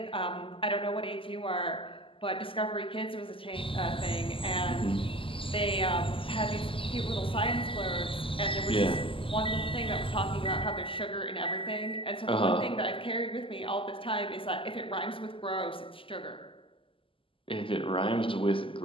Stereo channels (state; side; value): late; right; 0.25 ms